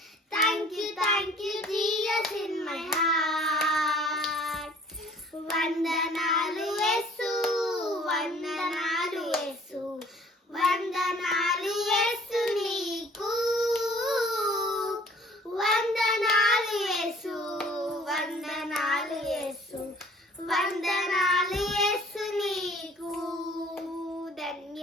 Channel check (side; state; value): both; normal; correlation 0.53